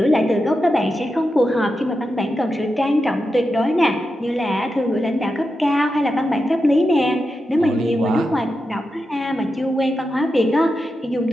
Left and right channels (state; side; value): normal; both; correlation 0.89